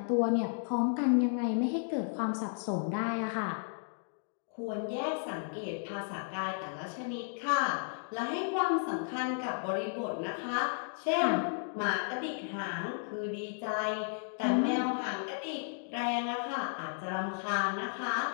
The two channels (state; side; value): silent; right; digital silence